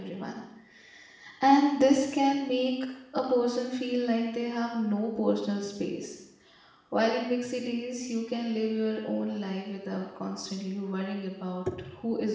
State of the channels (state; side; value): identical; both; correlation 1.00